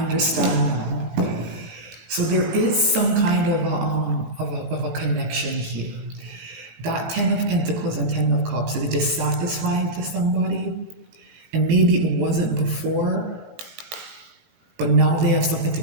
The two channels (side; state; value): left; late; 19 ms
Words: now. So there is some kind of a connection here. That 10 of Pentacles and 10 of Cups is dissatisfying to somebody, and maybe it wasn't before, but now they have something to